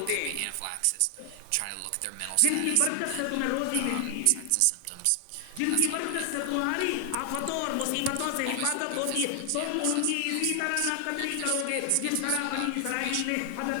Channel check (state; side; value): different; both; correlation 0.00